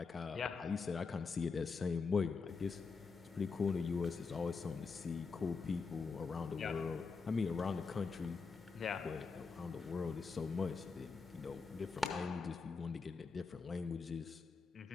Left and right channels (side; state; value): right; quieter; 4.8 dB